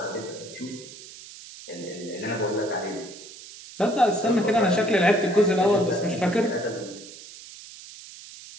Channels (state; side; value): noise; right; hiss, 16 dB below the sound